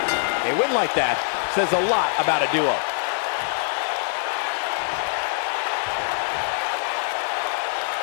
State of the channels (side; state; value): right; silent; digital silence